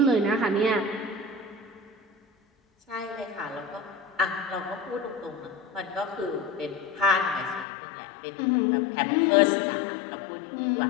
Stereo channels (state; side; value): drops out; right; at 7.7 s